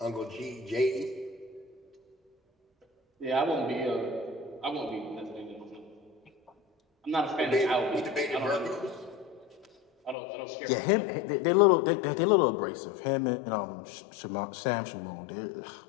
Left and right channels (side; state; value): right; drops out; at 10.2 s